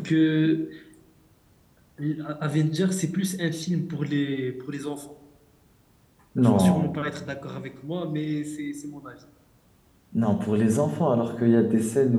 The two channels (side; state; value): both; identical; correlation 1.00